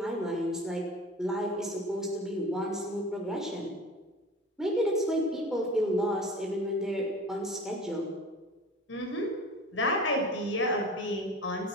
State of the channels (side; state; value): both; normal; correlation 0.38